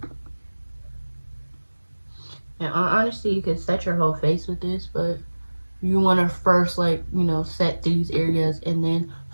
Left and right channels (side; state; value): both; inverted; correlation -1.00